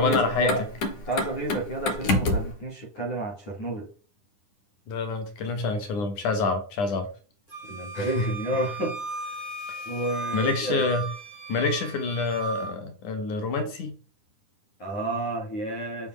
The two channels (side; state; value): right; late; 9.9 ms